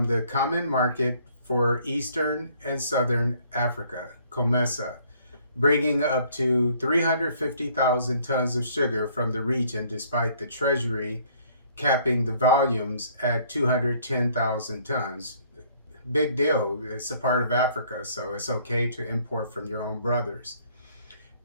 the common market for Eastern and Southern Africa, COMESA, bringing up to 350,000 tons of sugar from the region, despite the Treasury capping the volumes at 210,000 tons. Big deal. It's a part of Africa, so it's okay to import from your own brothers.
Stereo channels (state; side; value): inverted; both; correlation -0.61